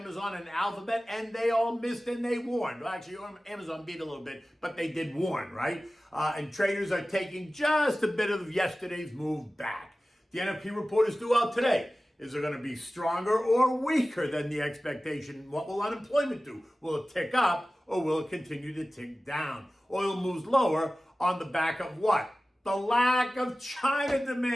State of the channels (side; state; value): both; normal; correlation 0.96